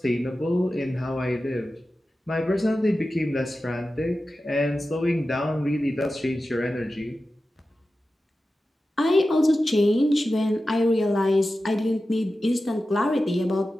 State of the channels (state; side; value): normal; both; correlation 0.93